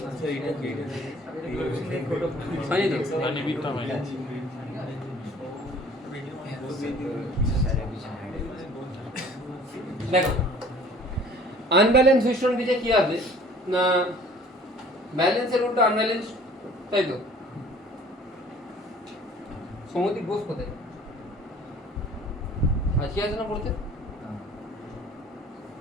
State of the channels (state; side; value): normal; both; correlation 0.51